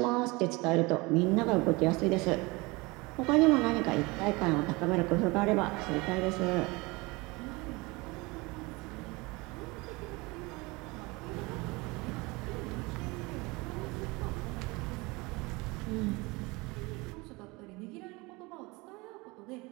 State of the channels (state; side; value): quieter; left; 24.6 dB